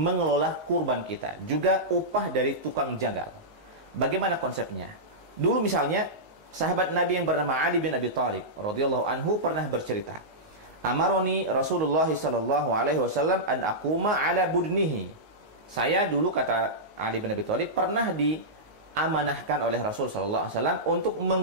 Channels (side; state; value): left; late; 19 ms